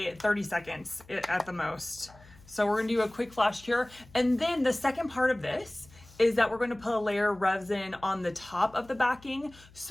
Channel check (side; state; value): left; noise; hum, 24 dB below the sound